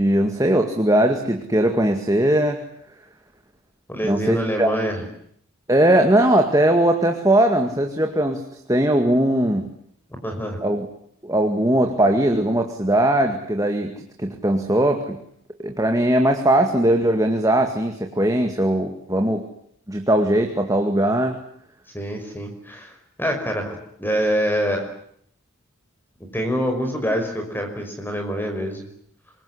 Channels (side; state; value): both; normal; correlation 0.68